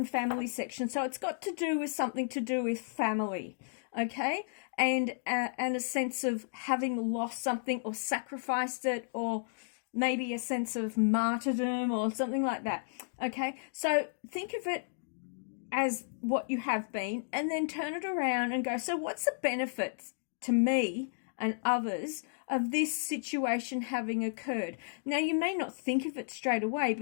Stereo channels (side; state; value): right; silent; digital silence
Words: family section, so it's got to do with something to do with family, okay? And a sense of having lost something or sacrificed it, or maybe a sense of martyrdom or something like that, okay? So think of it as what you have been, and then turn it around and go, so what's the benefits to me and others of this situation having occurred? Now, you may not think of it straight away,